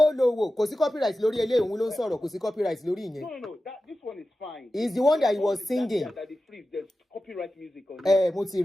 lowo. Kò sí copyright lórí eléyìí, òun ló ń sọ̀rọ̀, kò sí copyright lórí ìyẹn. No. This one is fine. It's the one that he was singing. There's copyright music on it.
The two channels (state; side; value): normal; both; correlation 0.93